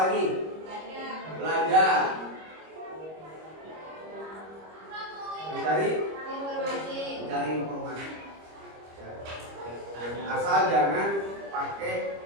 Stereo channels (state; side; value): late; left; 25 ms